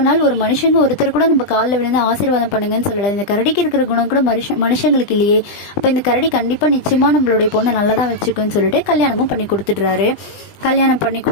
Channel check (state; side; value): late; right; 20 ms